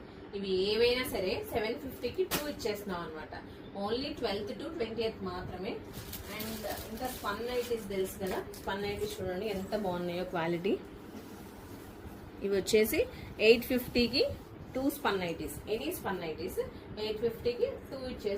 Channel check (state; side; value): identical; both; correlation 1.00